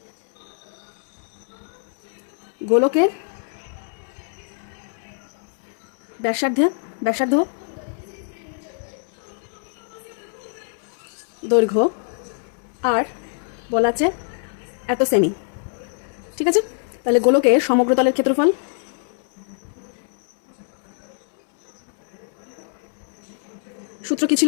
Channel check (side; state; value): right; silent; 63 dB below the other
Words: গোলকের ব্যাসার্ধ দৈর্ঘ্য আর বলা আছে এত সেমি, ঠিক আছে। তাহলে গোলকের সমগ্র তলের ক্ষেত্রফল, সূত্র কি ছিল,